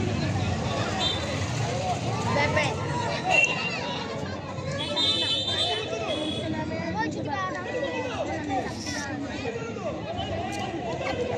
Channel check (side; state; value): both; identical; correlation 1.00